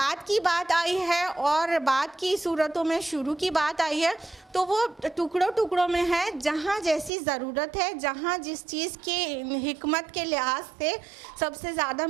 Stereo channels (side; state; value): left; drops out; at 7.1 s